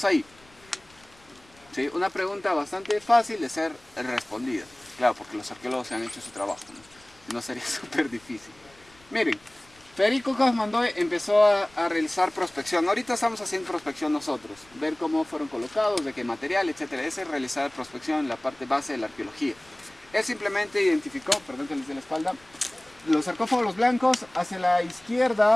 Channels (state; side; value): noise; left; rumble, 28 dB below the sound